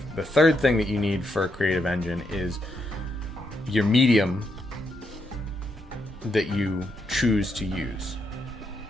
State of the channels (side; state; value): both; normal; correlation 0.80